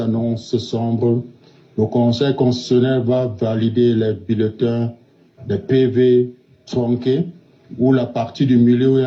sombres. Le Conseil constitutionnel va valider les bulletins, les PV tronqués, où la partie du milieu où il y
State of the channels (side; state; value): both; identical; correlation 1.00